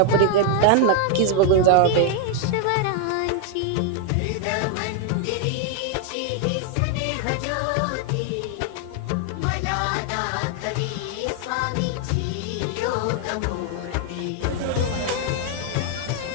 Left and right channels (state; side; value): different; both; correlation 0.00